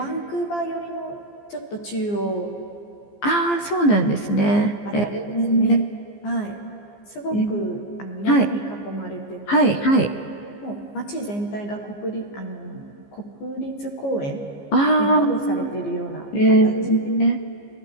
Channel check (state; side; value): late; right; 15 ms